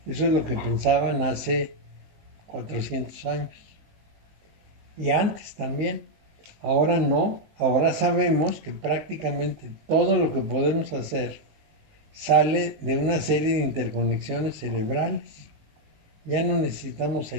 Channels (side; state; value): left; late; 19 ms